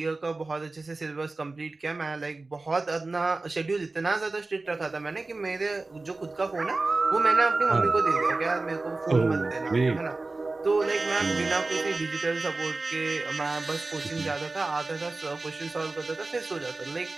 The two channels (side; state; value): left; quieter; 3.4 dB